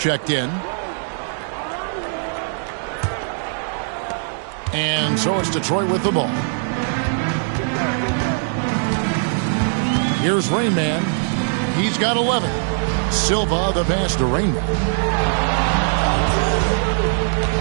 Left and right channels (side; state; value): left; silent; 62 dB below the other